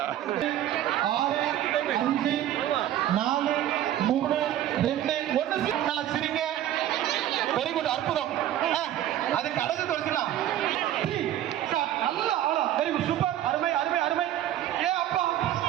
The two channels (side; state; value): left; quieter; 12.3 dB